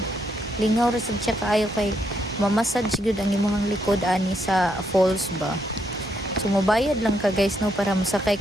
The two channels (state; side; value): normal; both; correlation 0.76